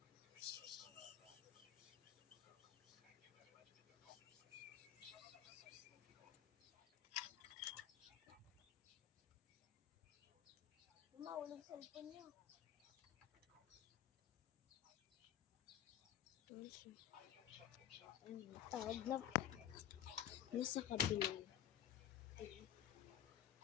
Mahulog cellphone niya. Tawag na nasa kabila.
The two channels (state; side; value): quieter; right; 11.0 dB